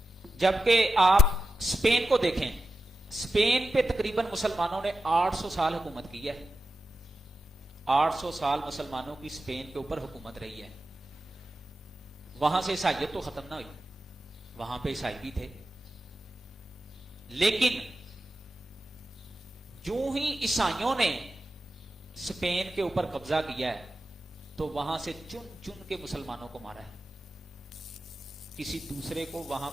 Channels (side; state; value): both; normal; correlation 0.91